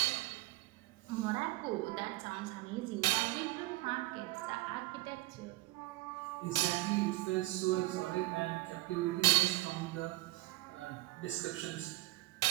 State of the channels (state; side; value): quieter; left; 19.7 dB